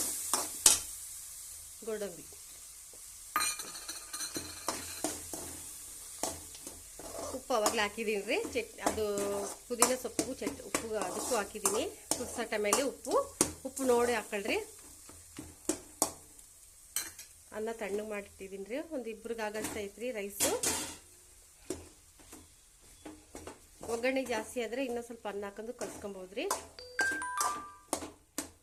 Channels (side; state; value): both; identical; correlation 1.00